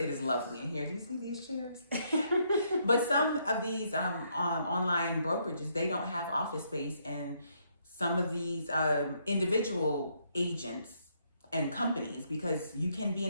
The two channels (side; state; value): both; inverted; correlation -0.73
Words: is lovely in here. Do you see these chairs? But some of these online brokerages, they don't have office space, and some of these individual agents and companies, because you can be